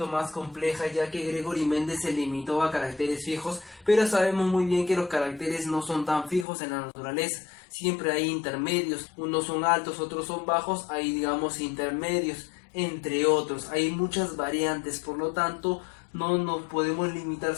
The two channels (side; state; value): right; drops out; at 6.5 s